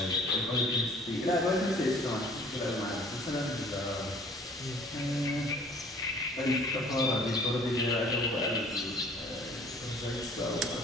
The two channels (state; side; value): normal; both; correlation 0.53